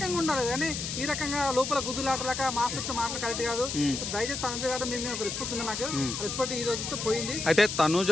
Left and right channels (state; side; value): noise; left; hiss, 4 dB below the sound